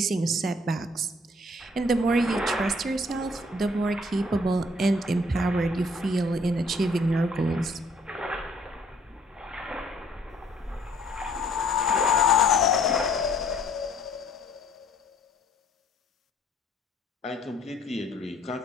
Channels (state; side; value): normal; both; correlation 0.59